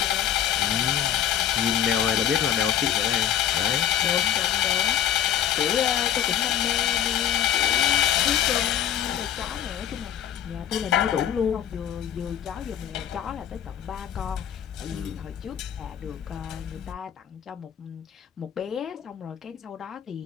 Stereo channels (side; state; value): right; quieter; 10.4 dB